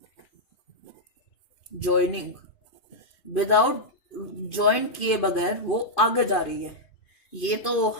joining, without join किए बगैर वो आगे जा रही है। ये तो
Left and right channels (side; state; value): right; late; 2.5 ms